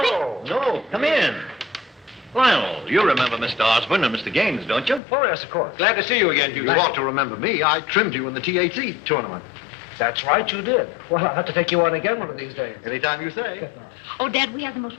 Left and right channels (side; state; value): right; drops out; at 5.0 s